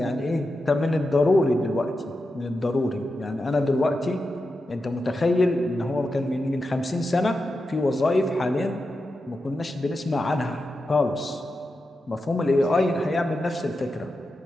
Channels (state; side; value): normal; both; correlation 0.89